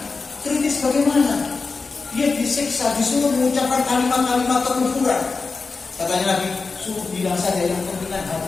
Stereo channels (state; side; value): quieter; right; 4.3 dB